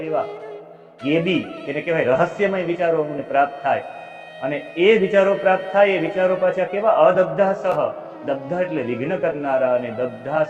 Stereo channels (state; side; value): identical; both; correlation 1.00